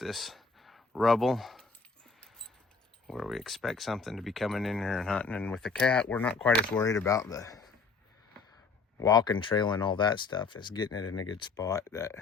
rubble where we expect something to be coming in here and hunting. And with the cat, we're not quite as worried about the walking trail and all that stuff as getting it in a good spot that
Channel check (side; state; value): right; quieter; 4.6 dB